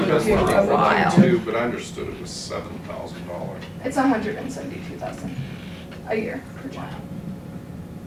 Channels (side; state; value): both; identical; correlation 1.00